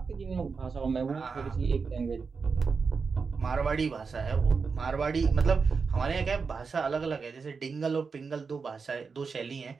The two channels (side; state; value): left; quieter; 5.1 dB